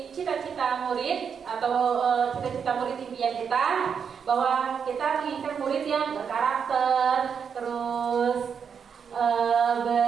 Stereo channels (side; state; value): left; quieter; 6.8 dB